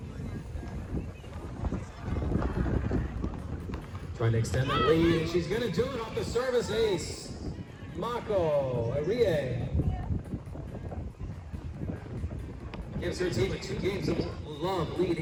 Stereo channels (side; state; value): both; identical; correlation 1.00